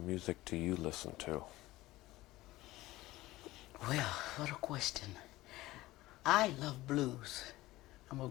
music do you listen to? Well, what a question. I love blues. I'm a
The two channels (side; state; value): right; quieter; 17.8 dB